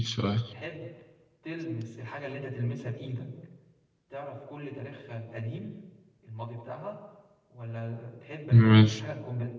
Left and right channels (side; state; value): both; identical; correlation 1.00